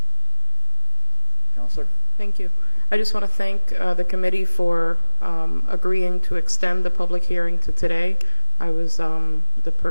Counselor? Thank you. I just want to thank the committee for agreeing to extend the public hearing to today. I was the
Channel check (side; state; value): both; inverted; correlation -1.00